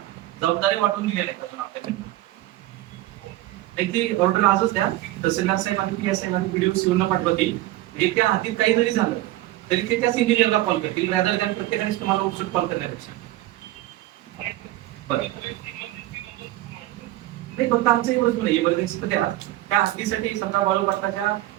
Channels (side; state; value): left; quieter; 15.9 dB